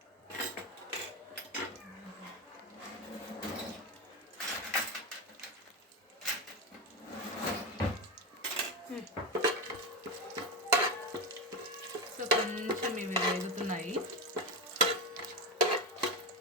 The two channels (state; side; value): normal; both; correlation 0.16